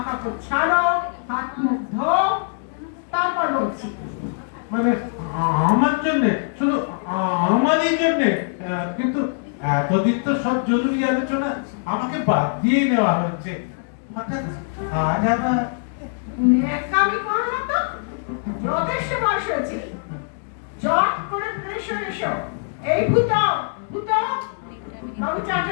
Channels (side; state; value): right; silent; digital silence